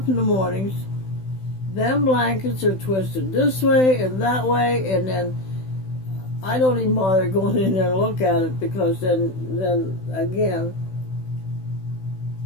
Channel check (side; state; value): right; late; 16 ms